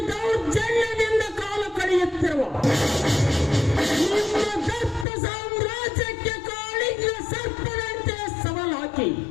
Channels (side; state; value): right; drops out; at 5.1 s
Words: ದೌರ್ಜನ್ಯದಿಂದ ಕಾಲ ಕಳೆಯುತ್ತಿರುವ ನಿಮ್ಮ ದತ್ತ ಸಾಮ್ರಾಜ್ಯಕ್ಕೆ ಕಾಳಿಂಗ ಸರ್ಪದಂತೆ ಸವಾಲಾಕಿ